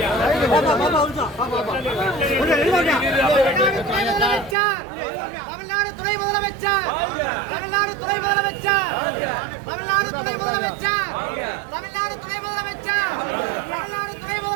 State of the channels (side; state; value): left; drops out; at 4.5 s